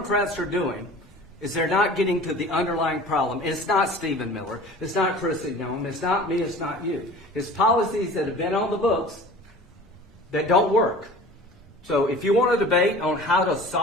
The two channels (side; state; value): both; normal; correlation 0.42